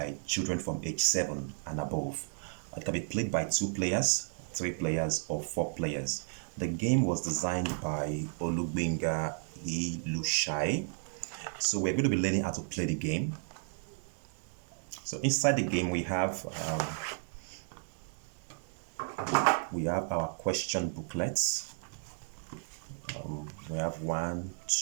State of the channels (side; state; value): left; silent; 56 dB below the other